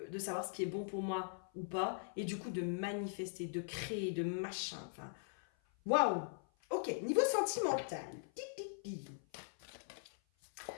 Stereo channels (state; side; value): silent; right; 51 dB below the other